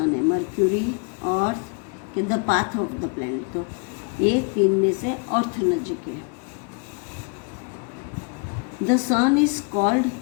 है? मर्क्यूरी, अर्थ के the path of the planet, तो ये तीन में से अर्थ नजीक है। द सन इज कॉल्ड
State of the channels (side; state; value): right; quieter; 34.1 dB